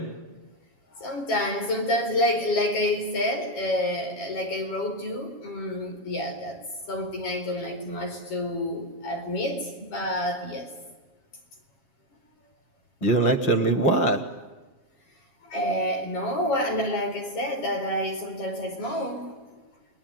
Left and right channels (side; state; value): right; late; 7.3 ms